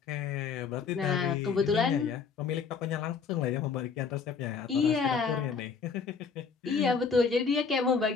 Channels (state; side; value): quieter; right; 5.6 dB